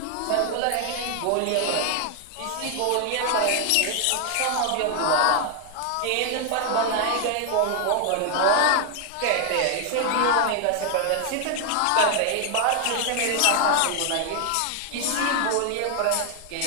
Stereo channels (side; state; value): both; different; correlation 0.00